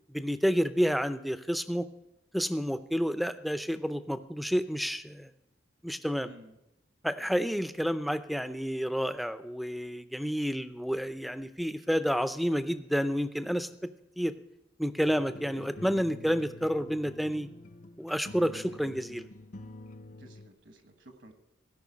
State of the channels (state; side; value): normal; both; correlation 0.98